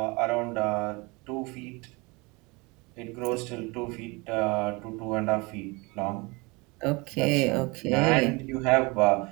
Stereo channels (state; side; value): quieter; left; 26.4 dB